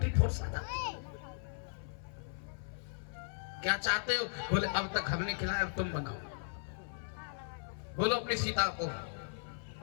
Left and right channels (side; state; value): right; silent; 53 dB below the other